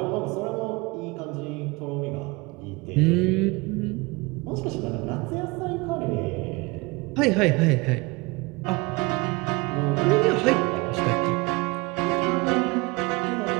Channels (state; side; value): quieter; left; 25.4 dB